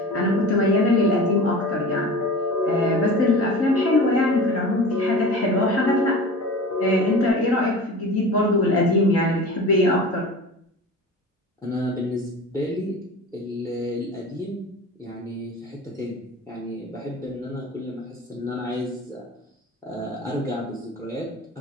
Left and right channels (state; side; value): normal; both; correlation 0.35